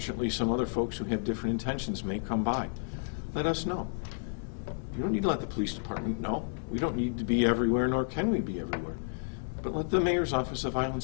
some other folks who have different intentions may come by. Let us know. You don't need to let the police department know. We don't need to be everywhere, nor can we be everywhere. But let the Mayor's Office of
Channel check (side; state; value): right; silent; digital silence